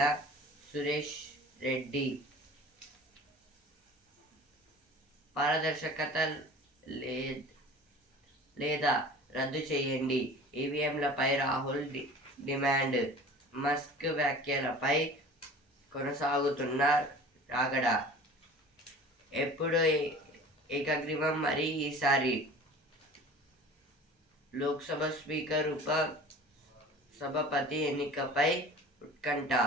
సురేష్ రెడ్డి. పారదర్శకత లేదా రద్దు చేయండి. ఈవీఎంలపై రాహుల్ డిమాండ్. మస్క్ వ్యాఖ్యలపై కొనసాగుతున్న రాగడ. ఎప్పుడు ఏకగ్రీవం మరి ఈసారి. లోక్సభ స్పీకర్ ఉప సభాపతి ఎన్నికపై ఉత్కంఠ.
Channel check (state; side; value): normal; both; correlation 0.42